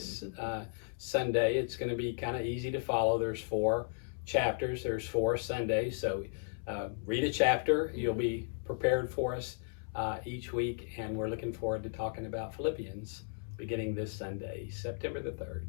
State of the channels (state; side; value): silent; right; 54 dB below the other